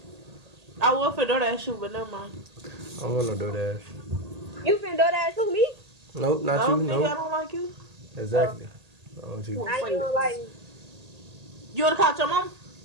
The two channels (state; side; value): late; left; 1.8 ms